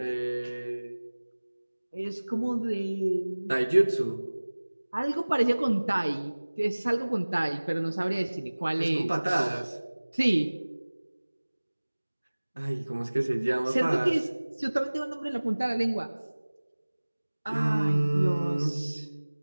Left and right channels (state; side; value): inverted; both; correlation -1.00